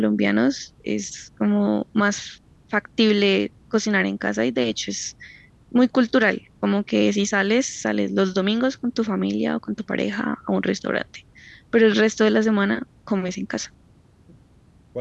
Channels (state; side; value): identical; both; correlation 1.00